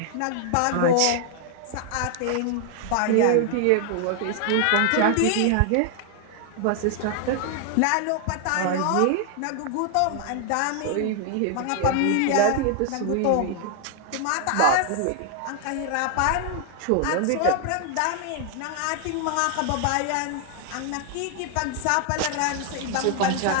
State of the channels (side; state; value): both; different; correlation 0.00